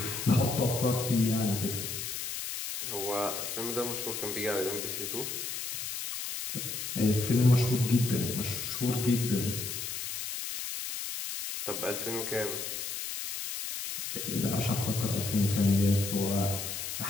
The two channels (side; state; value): left; noise; hiss, 5 dB below the sound